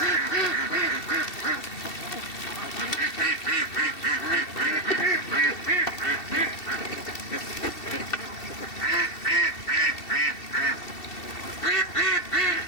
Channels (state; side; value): late; right; 2.7 ms